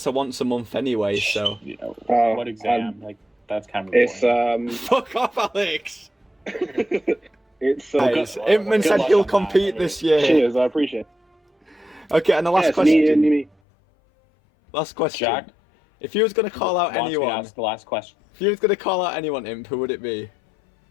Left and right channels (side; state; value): right; drops out; at 13.5 s